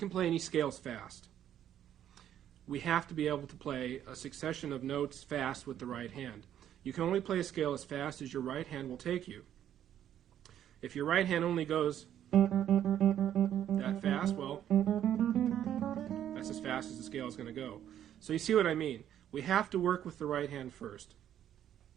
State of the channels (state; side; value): quieter; left; 10.6 dB